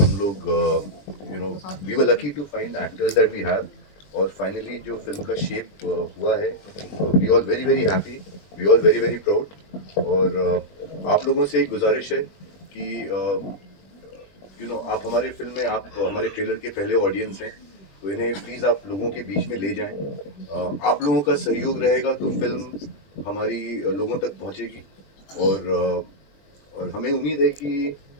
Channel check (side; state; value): right; late; 21 ms